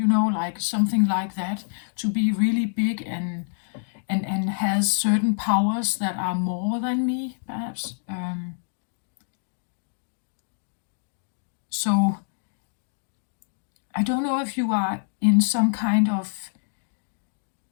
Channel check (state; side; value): silent; right; digital silence